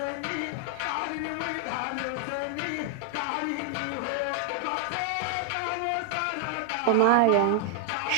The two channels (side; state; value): both; different; correlation 0.00